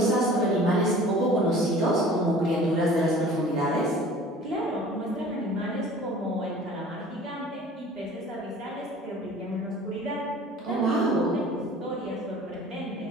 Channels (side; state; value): both; normal; correlation 0.46